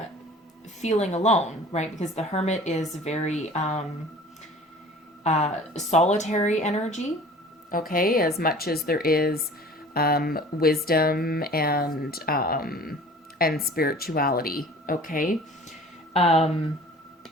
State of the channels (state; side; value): normal; both; correlation 0.46